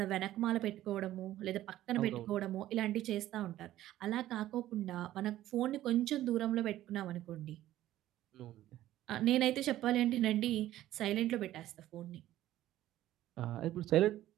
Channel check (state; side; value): quieter; left; 14.0 dB